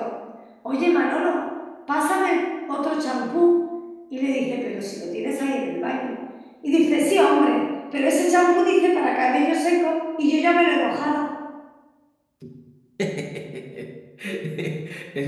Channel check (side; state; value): both; identical; correlation 1.00